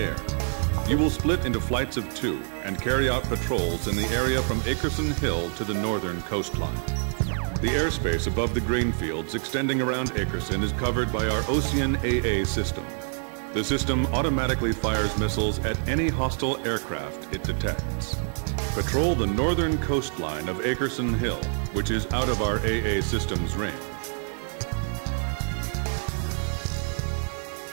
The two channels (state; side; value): silent; left; 61 dB below the other